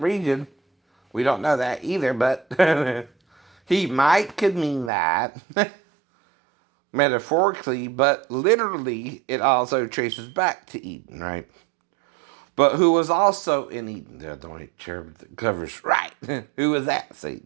region, we don't know that either, but he might could mean that metaphorically, but literally it also traces back to Eden, right? But who was also in Eden? The white cherub that covers, right? Who was that?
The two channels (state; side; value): drops out; left; at 4.9 s